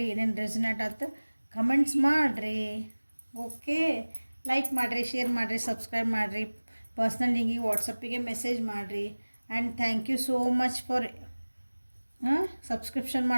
ಏನೇನು ರೆಸನೇಟ್ ಆಯ್ತು ಕಮೆಂಟ್ಸ್ ಮಾಡಿರಿ. ಓಕೆ, ಲೈಕ್ ಮಾಡಿರಿ, ಶೇರ್ ಮಾಡಿರಿ, ಸಬ್ಸ್ಕ್ರೈಬ್ ಮಾಡಿರಿ, ಪರ್ಸ್ನಲ್ ಲಿಂಕಿಗೆ ವಾಟ್ಸಪ್ಪಿಗೆ ಮೆಸೇಜ್ ಮಾಡಿರಿ. And thank you so much for subscription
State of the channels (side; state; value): both; inverted; correlation -1.00